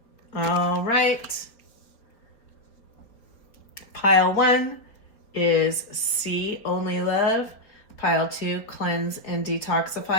All right. Pile 1 is see only love. Pile 2, cleanse and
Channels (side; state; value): right; late; 4.6 ms